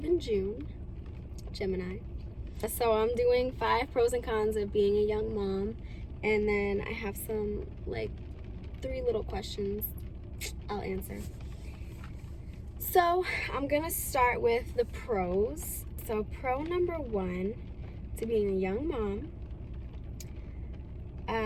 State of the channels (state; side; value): identical; both; correlation 1.00